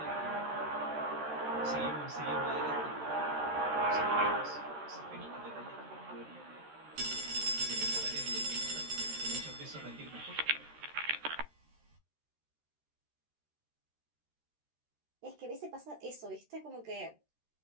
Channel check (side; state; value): left; late; 13 ms